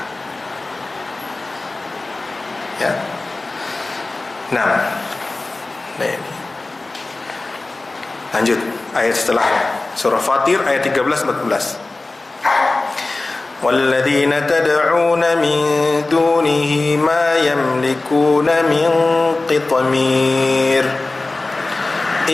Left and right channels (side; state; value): right; quieter; 3.2 dB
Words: Ya. Nah ini. Lanjut ayat setelahnya, surah Fatir ayat 13-14. وَالَّذِينَ تَدْعُونَ مِن دُونِهِ مَا يَمْلِكُونَ مِن قِطْمِيرٍ